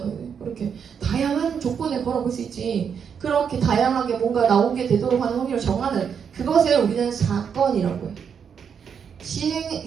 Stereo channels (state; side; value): quieter; left; 7.2 dB